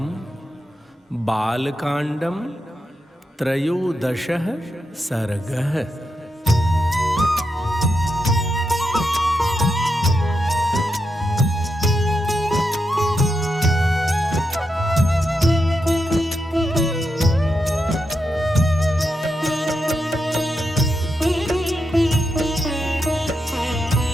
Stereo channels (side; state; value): both; normal; correlation 0.85